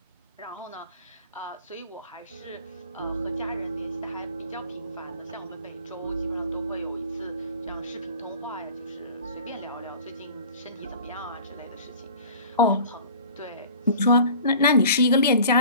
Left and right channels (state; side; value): inverted; both; correlation -0.44